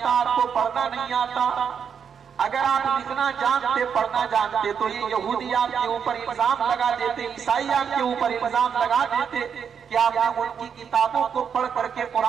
آپ کو پڑھنا نہیں آتا، اگر آپ لکھنا جانتے پڑھنا جانتے تو یہ یہودی آپ کے اوپر الزام لگا دیتے، عیسائی آپ کے اوپر الزام لگا دیتے کہ آپ نے ان کی کتابوں کو پڑھ کر کے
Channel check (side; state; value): left; quieter; 7.2 dB